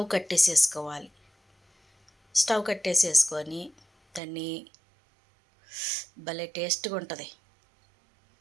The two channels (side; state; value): left; drops out; at 4.2 s